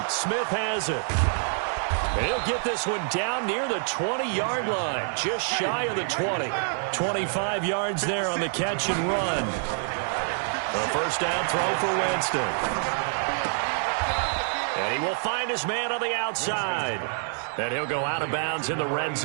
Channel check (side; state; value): left; silent; 60 dB below the other